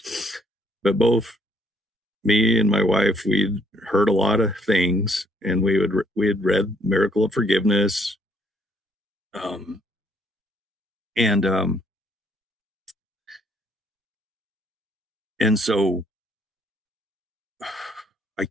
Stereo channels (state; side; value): normal; both; correlation 0.67